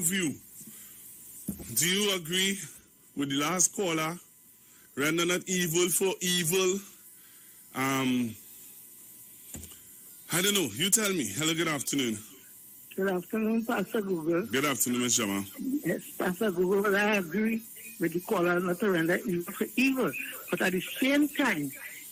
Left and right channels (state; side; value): identical; both; correlation 1.00